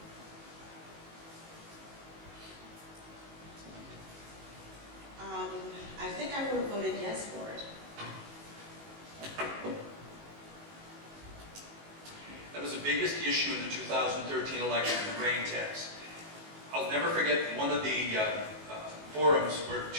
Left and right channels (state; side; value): late; left; 19 ms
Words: I think I would have voted yes for it. That was the biggest issue in the 2013 election, the grain tax. I'll never forget one of the forums where